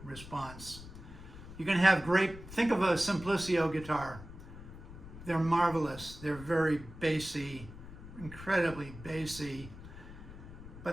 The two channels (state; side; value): noise; left; rumble, 14 dB below the sound